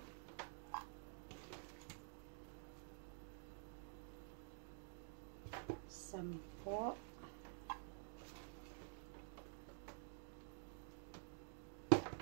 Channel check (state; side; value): silent; left; digital silence